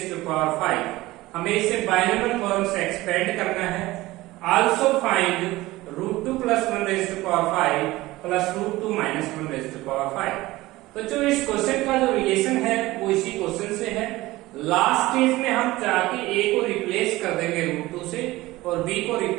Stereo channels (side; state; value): left; quieter; 18.6 dB